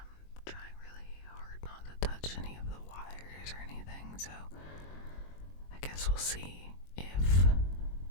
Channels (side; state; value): right; late; 22 ms